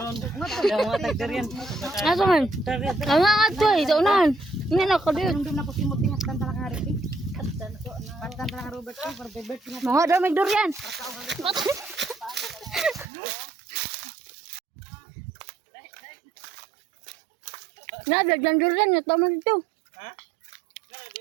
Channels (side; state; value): left; drops out; at 13.1 s